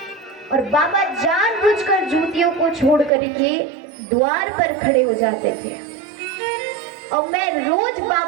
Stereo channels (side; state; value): left; drops out; at 3.1 s